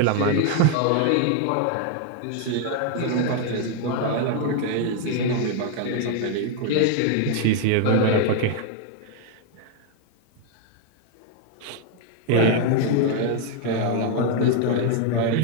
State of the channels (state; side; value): different; both; correlation 0.01